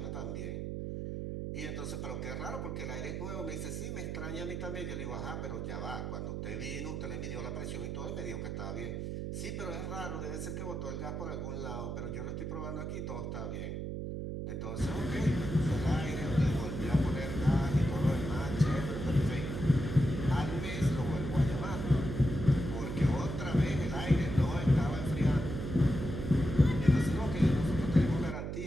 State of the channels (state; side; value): noise; right; hum, 4 dB below the sound